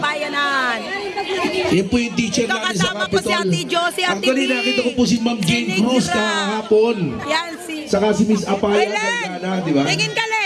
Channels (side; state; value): both; identical; correlation 1.00